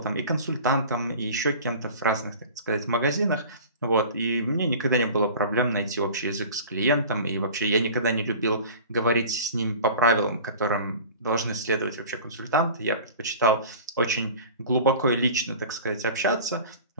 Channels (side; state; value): both; inverted; correlation -0.40